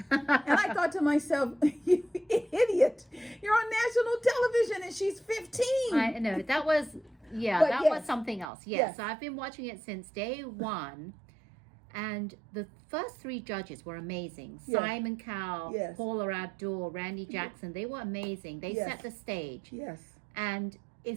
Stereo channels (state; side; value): drops out; left; at 8.5 s